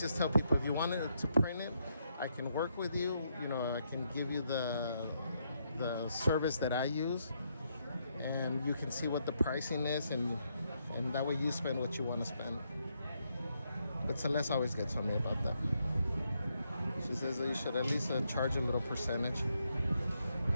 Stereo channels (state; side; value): inverted; both; correlation -0.78